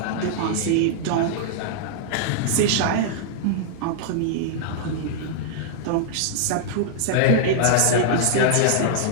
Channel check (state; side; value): different; both; correlation -0.01